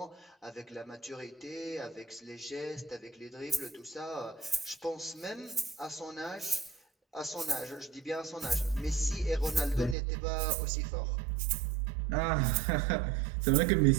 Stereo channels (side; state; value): left; drops out; at 10.0 s